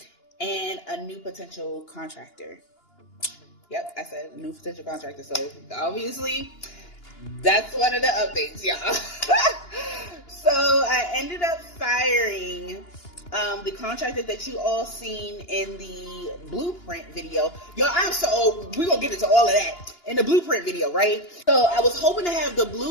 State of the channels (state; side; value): late; right; 2.9 ms